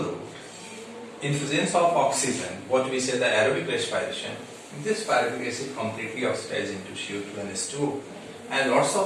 route, in presence of oxygen, what we say the aerobic respiration, this pyruvic acid completely oxidizes into CO2 and H2O and lots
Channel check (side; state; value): both; identical; correlation 1.00